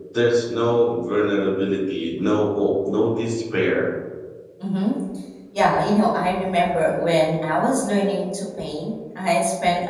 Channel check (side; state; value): both; identical; correlation 1.00